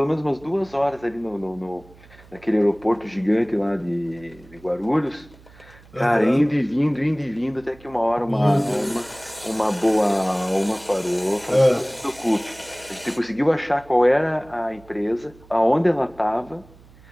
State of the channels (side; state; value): right; noise; hum, 24 dB below the sound